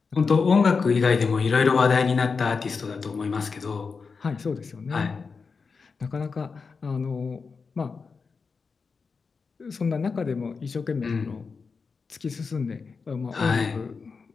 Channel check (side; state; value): right; quieter; 5.0 dB